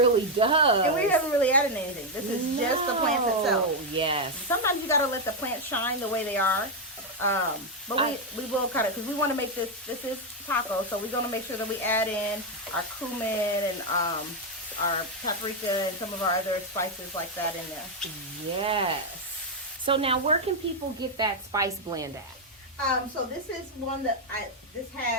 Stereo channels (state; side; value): normal; both; correlation 0.02